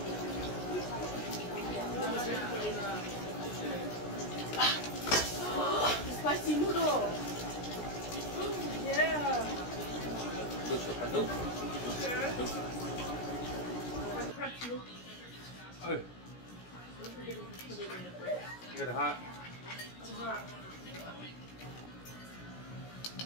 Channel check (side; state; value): right; late; 17 ms